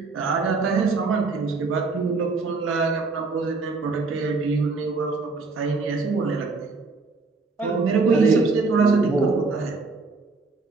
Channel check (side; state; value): left; quieter; 4.0 dB